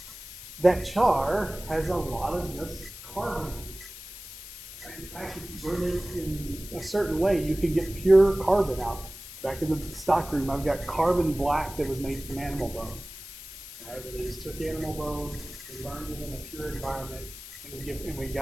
has a lot of just carbon. In fact, if you burn it in a certain way, you can get pure carbon out. Back in the stockroom, I've got carbon black that was made from animal bone. All right, where they just took animal bone and burned it in a pure environment, and we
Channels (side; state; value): left; noise; hiss, 14 dB below the sound